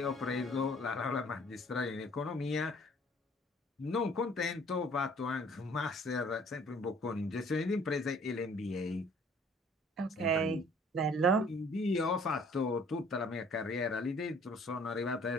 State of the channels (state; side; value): normal; both; correlation 0.56